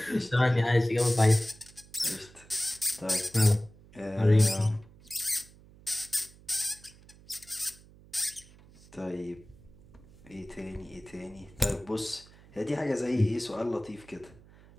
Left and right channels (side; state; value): right; noise; hum, 24 dB below the sound